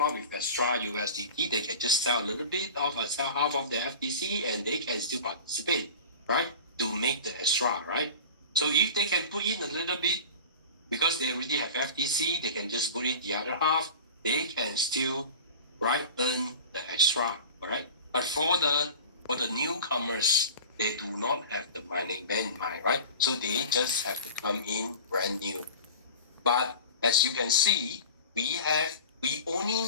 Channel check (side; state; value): both; inverted; correlation -0.36